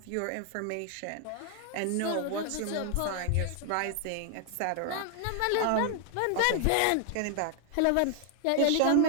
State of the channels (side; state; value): both; different; correlation 0.00